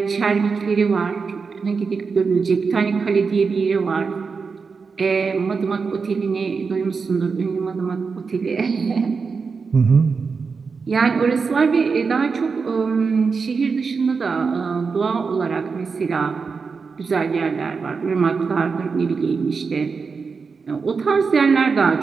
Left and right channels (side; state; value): left; quieter; 5.1 dB